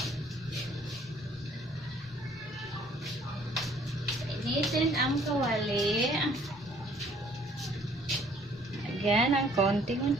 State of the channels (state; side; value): normal; both; correlation 0.59